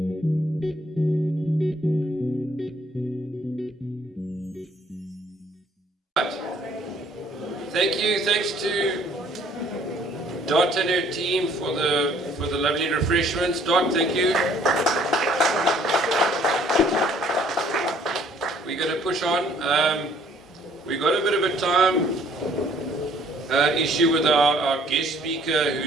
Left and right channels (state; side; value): normal; both; correlation 0.60